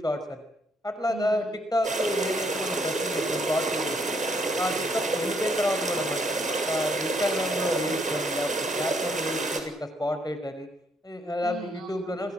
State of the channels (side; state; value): both; normal; correlation 0.71